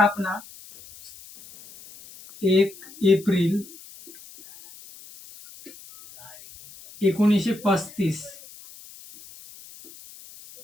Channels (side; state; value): left; noise; hiss, 20 dB below the sound